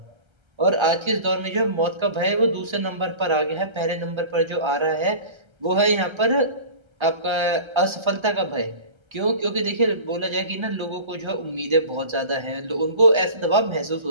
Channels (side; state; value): left; late; 1.3 ms